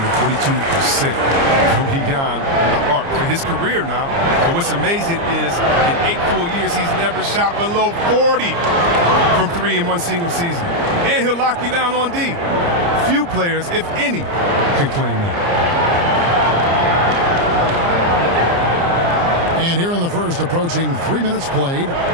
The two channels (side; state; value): left; late; 29 ms